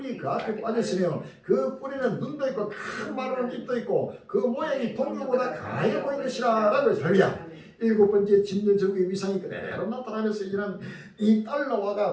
그 앞에 빠졌으며 그 뿔에는 눈도 있고 큰 마른 입도 있고 그 모양이 동료보다 가해 보이는 것이라 라고 해서 별이야. 7번째 짐승 제국의 위상이 그대로 나타나면서 이런 이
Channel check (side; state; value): both; identical; correlation 1.00